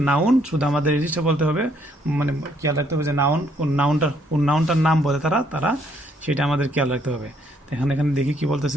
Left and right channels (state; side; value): normal; both; correlation 0.69